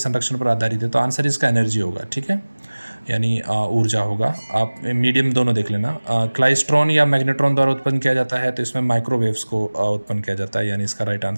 पर आधारित है, तो आंसर इसका एनर्जी होगा। ठीक है, यानी ऊर्जा होगा। आप मीडियम दोनों देख लेना। क्लाइस्ट्रॉन या मैग्नेट्रॉन द्वारा उत्पन्न किया जाता है, तो इसमें माइक्रोवेव्स को उत्पन्न किया जाता है, यानी इसका राइट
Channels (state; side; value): inverted; both; correlation -1.00